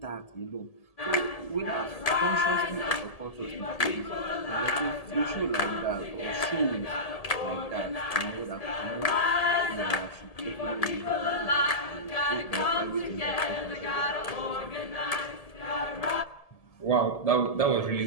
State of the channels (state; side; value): late; right; 1.7 ms